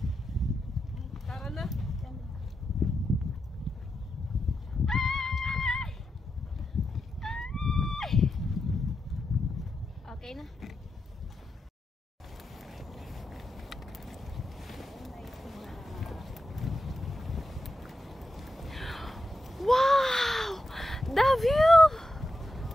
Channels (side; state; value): both; normal; correlation 0.88